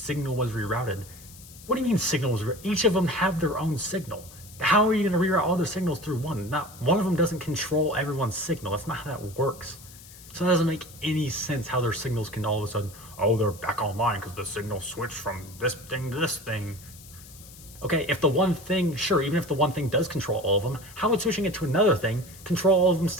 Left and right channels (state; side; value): noise; left; hiss, 19 dB below the sound